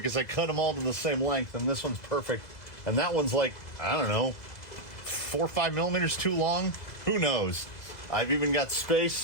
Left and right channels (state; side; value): late; right; 2.0 ms